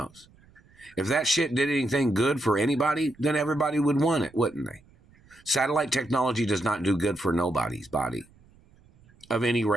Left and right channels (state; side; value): noise; right; rumble, 29 dB below the sound